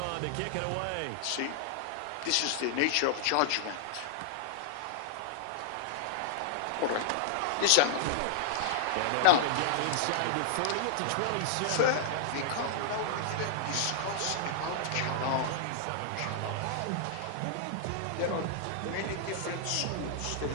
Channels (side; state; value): both; different; correlation -0.01